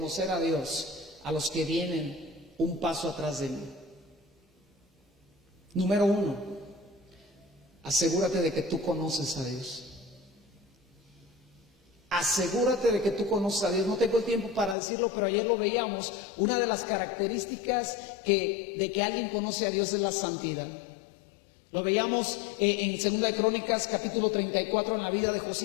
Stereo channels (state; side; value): drops out; right; at 14.8 s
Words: a Dios a los que vienen un paso atrás de mí? Número 1, asegúrate de que tú conoces a Dios. Asegúrate de que tú conoces a Dios. No tengo el tiempo para decirlo, pero ayer lo veíamos. Una de las características de que alguien conoce a Dios es la santidad. Lo veíamos en 2 de Crónicas, capítulo 34, en la vida de